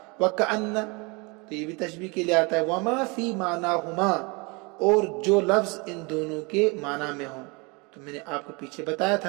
وَكَأَنَّ، تو یہ بھی تشبیہ کے لیے آتا ہے۔ وَمَا فِي مَعْنَاهُمَا، اور جو لفظ ان دونوں کے معنی میں ہوں۔ تو میں نے آپ کو پیچھے بتایا تھا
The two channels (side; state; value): left; quieter; 28.9 dB